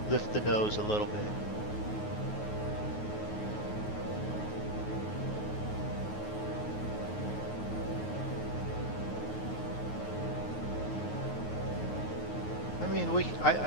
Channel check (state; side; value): late; right; 9.4 ms